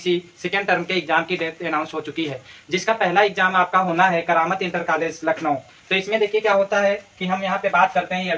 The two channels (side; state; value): both; identical; correlation 1.00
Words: सेकेंड टर्म के एग्जाम की डेट अनाउंस हो चुकी है, जिसका पहला एग्जाम आपका होना है करामत इंटर कॉलेज लखनऊ। तो इसमें देखिए क्या होता है कि हम यहाँ पे बात करते हैं